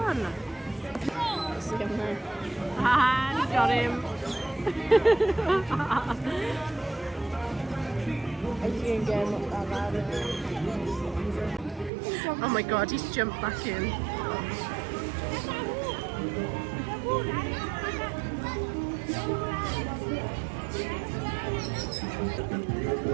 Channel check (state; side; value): drops out; left; at 11.9 s